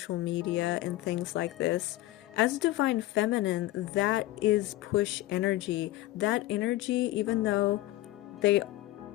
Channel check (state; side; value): quieter; right; 16.4 dB